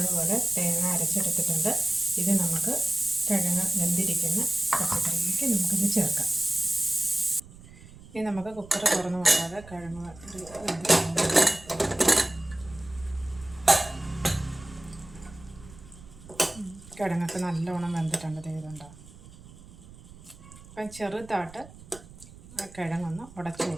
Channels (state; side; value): noise; right; rumble, 20 dB below the sound